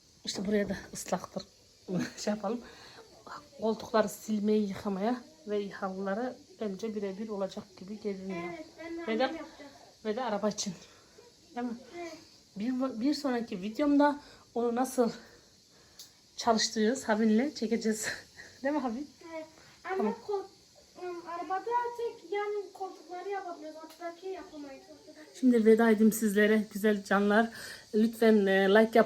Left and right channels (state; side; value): identical; both; correlation 1.00